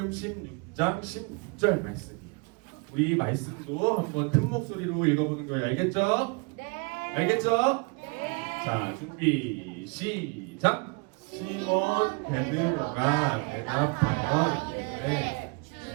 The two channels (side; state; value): left; quieter; 31.4 dB